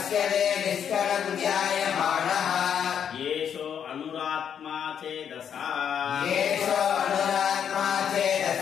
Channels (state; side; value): quieter; right; 8.3 dB